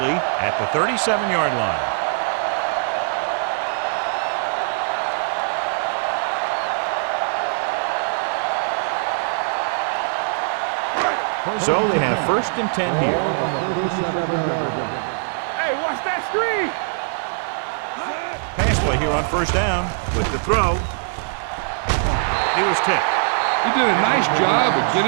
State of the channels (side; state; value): left; silent; digital silence